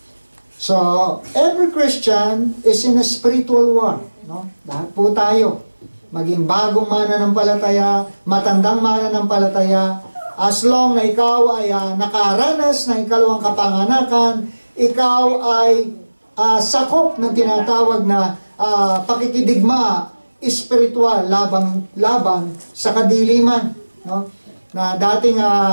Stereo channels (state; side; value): inverted; both; correlation -1.00